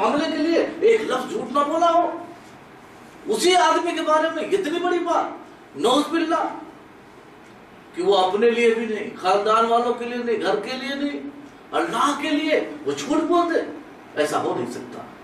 کے لیے ایک لفظ جھوٹ نہ بولا ہو، اسی آدمی کے بارے میں اتنی بڑی بات، نعوذ باللہ، کہ وہ اپنے لیے بھی نہیں، خاندان والوں کے لیے نہیں، گھر کے لیے نہیں، اللہ کے لیے وہ جھوٹ بولتے؟ ایسا ہو نہیں سکتا۔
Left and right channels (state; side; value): identical; both; correlation 1.00